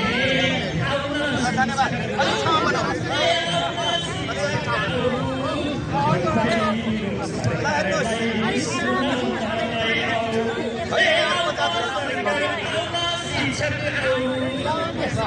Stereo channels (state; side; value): identical; both; correlation 1.00